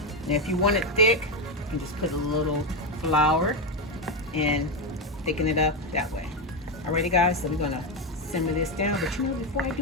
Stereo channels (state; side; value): normal; both; correlation 0.09